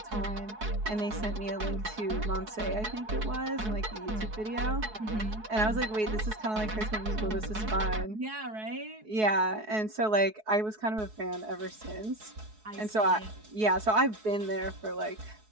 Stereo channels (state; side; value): late; left; 4.7 ms